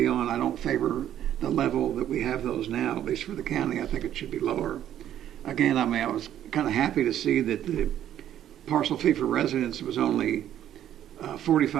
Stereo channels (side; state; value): left; quieter; 11.2 dB